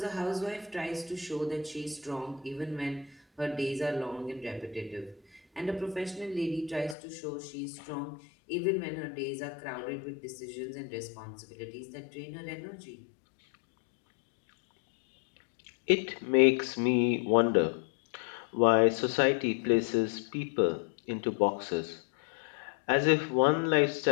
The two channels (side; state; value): right; drops out; at 7.0 s